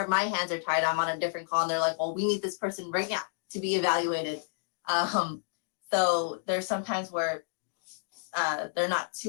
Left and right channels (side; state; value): right; silent; digital silence